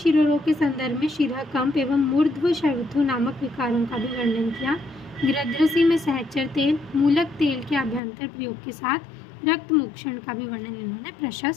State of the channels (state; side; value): drops out; right; at 8.0 s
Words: के संदर्भ में शिरा कंप एवं मूर्ध्व शवथु नामक विकारों का भी वर्णन किया। गृध्रसी में सहचर तेल, मूलक तेल के अभ्यंतर प्रयोग के साथ रक्त मोक्षण का भी वर्णन इन्होंने